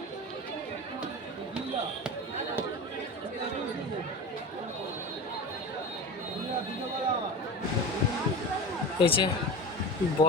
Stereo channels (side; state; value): both; normal; correlation 0.28